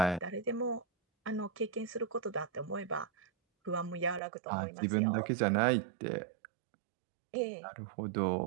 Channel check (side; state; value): left; drops out; at 4.2 s